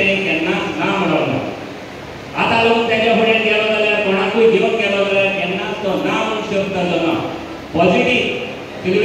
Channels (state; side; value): identical; both; correlation 1.00